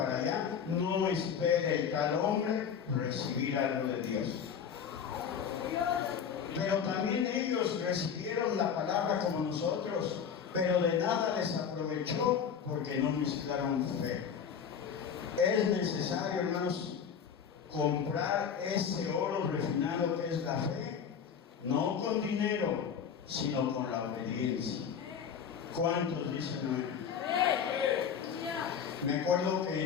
allá. No espere el tal hombre recibir algo de Dios. Pero también ellos recibieron la palabra como nosotros, pero de nada les aprovechó porque no mezclaron fe. Es necesario, hermanos, comprar ese oro refinado que es la fe, no con dinero, sino con la obediencia. ¿Cuántos dicen amén? Me acuerdo que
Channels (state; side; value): quieter; right; 7.3 dB